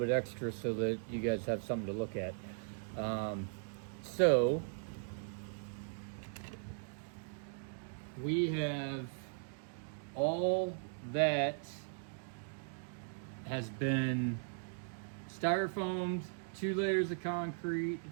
extra so that you guys have something to look at. So we have all that has been styrofoamed, 2 layers of concrete,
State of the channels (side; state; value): left; silent; digital silence